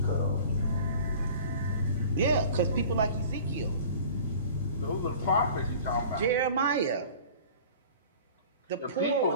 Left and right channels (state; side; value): inverted; both; correlation -0.44